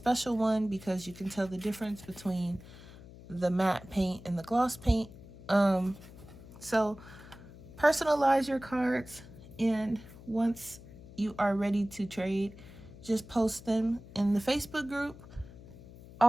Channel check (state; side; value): noise; left; hum, 18 dB below the sound